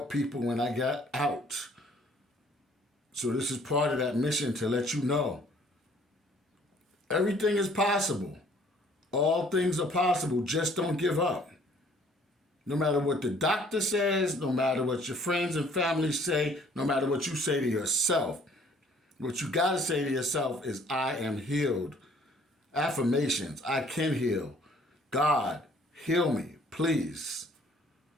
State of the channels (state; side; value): normal; both; correlation 0.58